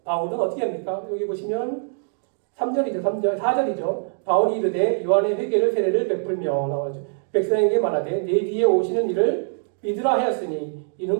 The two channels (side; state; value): left; silent; digital silence